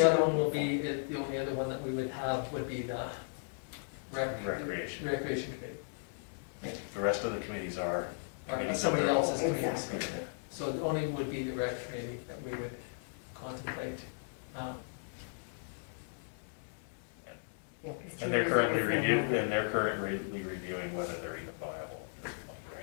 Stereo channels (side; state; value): right; silent; digital silence